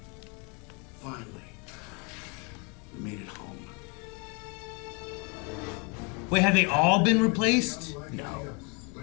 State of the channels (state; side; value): quieter; right; 32.9 dB